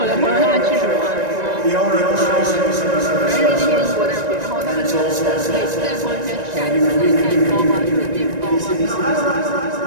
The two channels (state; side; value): late; left; 1.9 ms